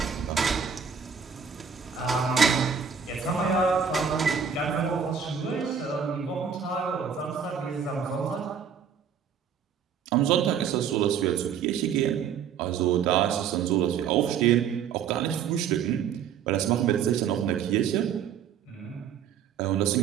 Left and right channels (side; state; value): left; quieter; 7.4 dB